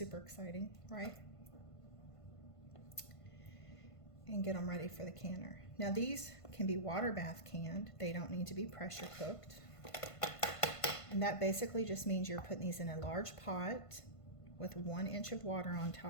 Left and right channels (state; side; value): late; right; 1.5 ms